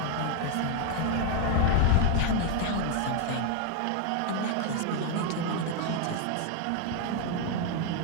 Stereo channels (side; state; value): both; different; correlation 0.01